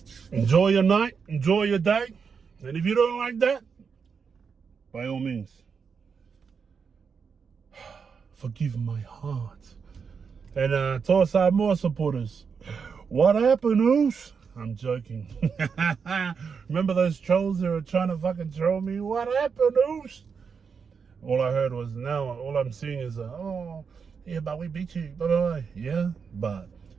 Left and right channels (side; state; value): left; quieter; 5.9 dB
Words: Enjoy your night, enjoy your day, and if you don't like that, by all means, forgive my heart. And towards our more supporters, what happened, Oos? I'm joking. Remember those trolls that were trying to fucking troll me? What happened, Oos? All I heard was, now all I'm seeing is, oh, yeah, but we beat you. Blah, blah, blah. Yeah, but